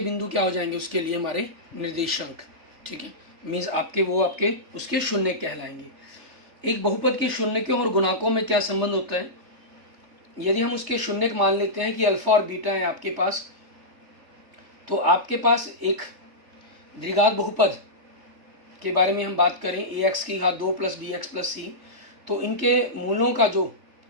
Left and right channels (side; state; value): left; late; 3.3 ms